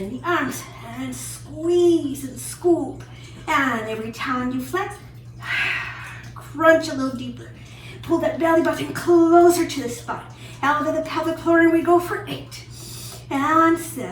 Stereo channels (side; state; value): both; identical; correlation 1.00